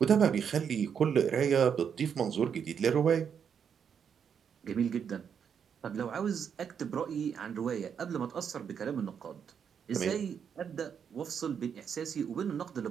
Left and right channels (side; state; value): left; quieter; 7.5 dB